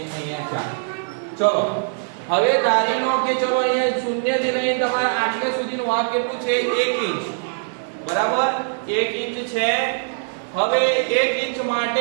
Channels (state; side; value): silent; left; digital silence